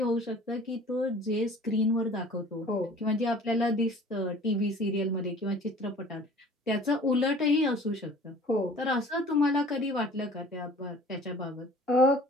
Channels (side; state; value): both; normal; correlation 0.47